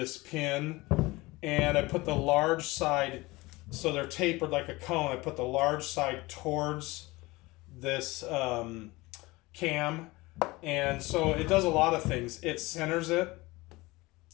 pin, and I put the large side, so they're tapered like a cone. I put the large side towards this cam, And so it does a lot of things. It centers it.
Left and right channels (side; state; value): right; quieter; 21.6 dB